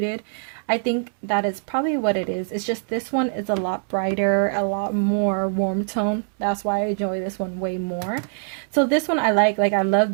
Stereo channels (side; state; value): left; silent; digital silence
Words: I think that is probably what it is. It's just this one is a lot brighter, a lot more warm tone. That's why I enjoy this one way more. So this one I like I